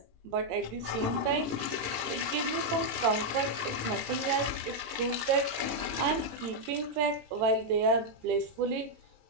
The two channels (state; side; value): late; left; 17 ms